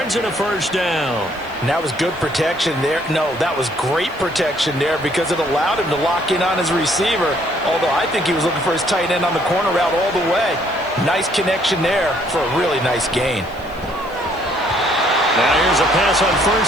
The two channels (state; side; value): noise; right; hiss, 27 dB below the sound